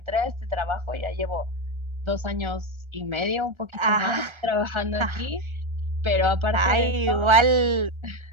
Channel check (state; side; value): late; left; 1.3 ms